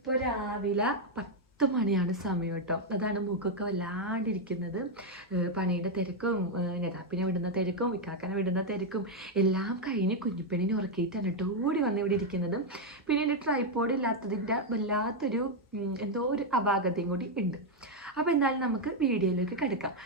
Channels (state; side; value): normal; both; correlation 0.01